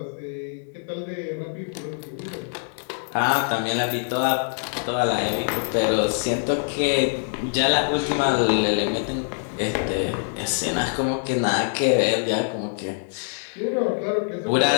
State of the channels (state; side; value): silent; right; digital silence